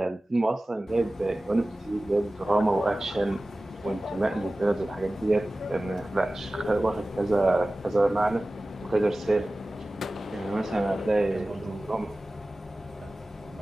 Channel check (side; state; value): both; normal; correlation 0.97